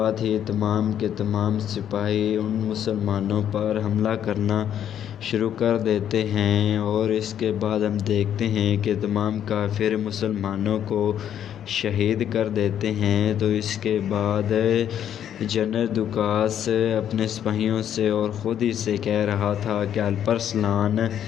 ہی تمام کے تمام سپاہی ان مسلمانوں پر حملہ کرنا شروع کر دیتے ہیں، اور اس کے بعد ہم دیکھتے ہیں کہ تمام کافر مسلمانوں کو شہید کر دیتے ہیں۔ تو اس کے بعد جنرل دوکاس اپنے سپاہیوں سے اور خود ہی سے کہہ رہا تھا کہ الپرسلان،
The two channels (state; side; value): quieter; right; 9.9 dB